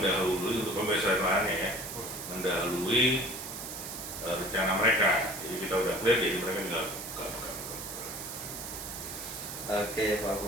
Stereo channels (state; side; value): noise; right; hiss, 8 dB below the sound